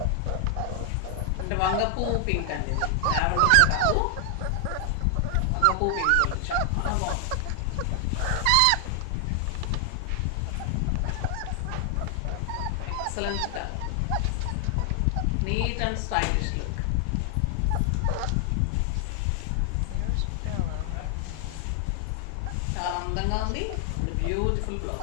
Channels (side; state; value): both; different; correlation 0.00